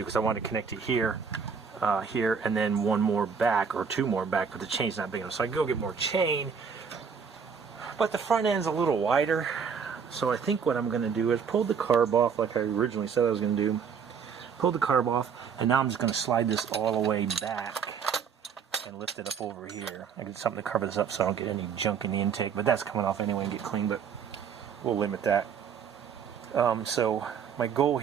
because I wanted to connect it here, here, and then one more back, or two more back, but the chain's not big enough. So I go get more chain, but the front end's a little wider. So I think what I'm going to do is pull the carb off like I originally said I was going to do. Pull the carb off, and now I'm just going to slide this all the way back and lift it up over here. I get something to cover this up so I don't get any junk in the intake, but that's coming off anyway and get clean, but we'll limit that. So my goal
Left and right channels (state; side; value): quieter; left; 6.5 dB